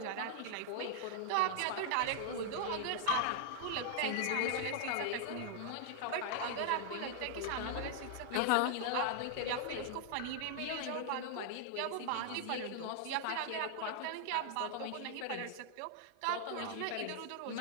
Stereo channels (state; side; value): different; both; correlation -0.01